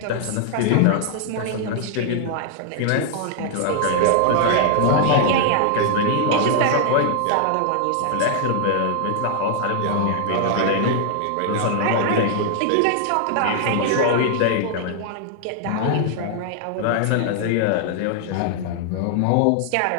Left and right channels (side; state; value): both; different; correlation 0.00